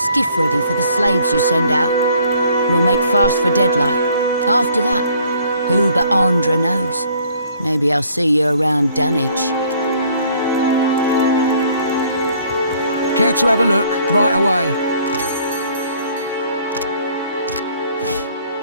ready for the slaves you send out. We'll make fast for Deadlight. After that, who but Andra knows? Maybe I'll see you around Dunwich. Care to have a look? Right away.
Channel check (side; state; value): both; inverted; correlation -0.60